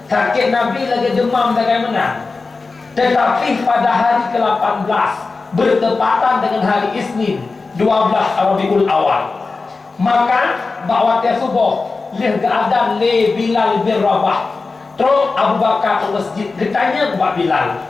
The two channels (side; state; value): right; quieter; 4.0 dB